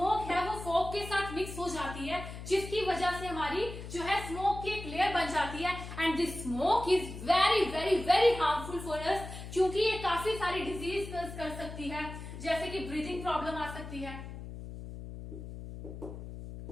है वो फॉग के साथ मिक्स हो जाती है, जिसकी वजह से हमारी जो है स्मोक की एक लेयर बन जाती है। And this smoke is very very very harmful for us, क्योंकि ये काफी सारी डिजीज कर सकती है, जैसे कि ब्रीदिंग प्रॉब्लम आ सकती है,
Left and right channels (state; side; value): noise; left; hum, 10 dB below the sound